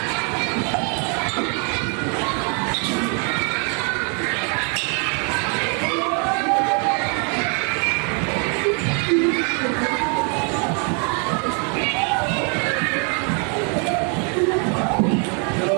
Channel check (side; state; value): left; quieter; 37.6 dB